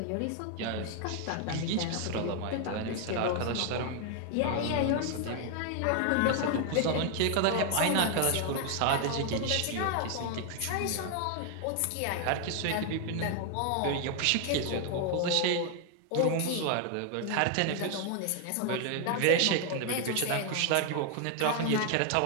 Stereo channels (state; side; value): different; both; correlation 0.00